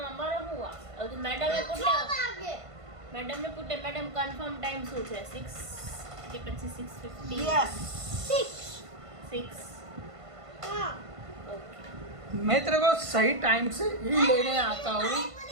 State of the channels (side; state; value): left; late; 1.5 ms